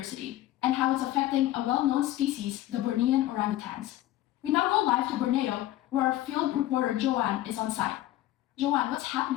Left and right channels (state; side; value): quieter; right; 14.5 dB